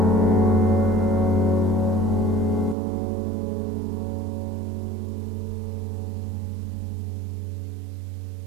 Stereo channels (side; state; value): left; drops out; at 2.8 s